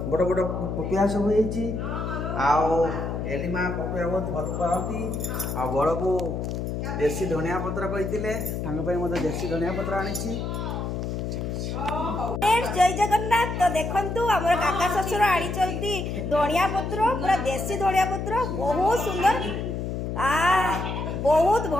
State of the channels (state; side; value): noise; left; hum, 3 dB below the sound